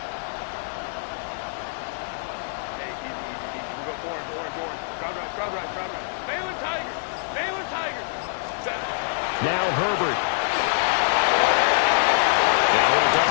Now Herbert. Now he'll dump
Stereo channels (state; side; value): silent; right; digital silence